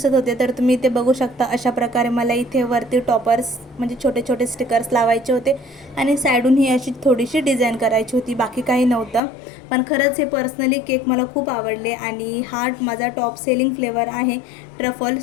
होते. तर तुम्ही इथे बघू शकता अशा प्रकारे मला इथे वरती टॉपर्स म्हणजे छोटे छोटे स्टिकर्स लावायचे होते आणि साईडून ही अशी थोडीशी डिझाईन करायची होती, बाकी काही नव्हतं. पण खरंच हे पर्सनली केक मला खूप आवडले आणि हा माझा टॉप सेलिंग फ्लेवर आहे ट्रफल,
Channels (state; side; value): drops out; right; at 9.2 s